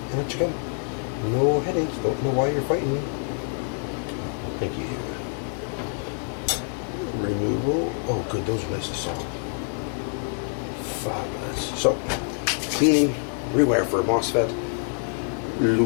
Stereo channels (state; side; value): silent; right; 55 dB below the other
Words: and let you go. No headaches. Don't know why you're fighting me. Thank you. Removal. Oh, good. Those are nice and soft. Fabulous. So, cleaning, rewire for a MOSFET,